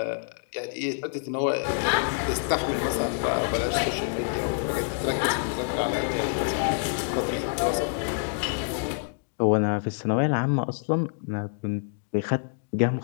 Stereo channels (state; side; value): silent; right; digital silence